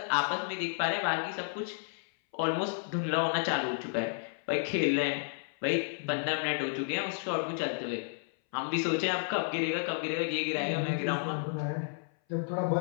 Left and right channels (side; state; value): right; silent; 57 dB below the other